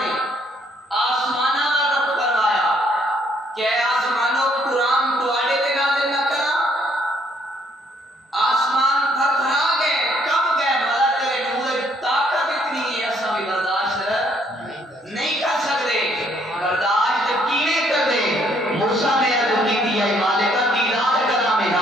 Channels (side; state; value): both; normal; correlation 0.67